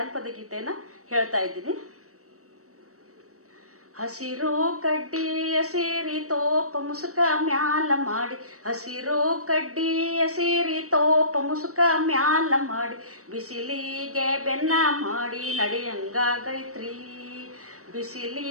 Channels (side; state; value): left; late; 0.65 ms